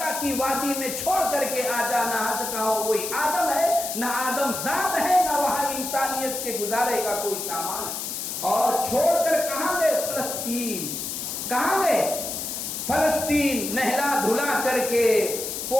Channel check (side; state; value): left; noise; hiss, 5 dB below the sound